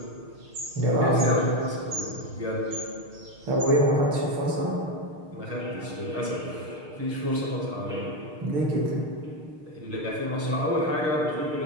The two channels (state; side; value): late; left; 6.5 ms